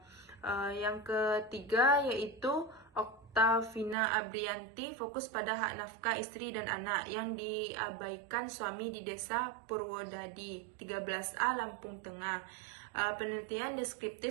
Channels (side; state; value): left; drops out; at 4.0 s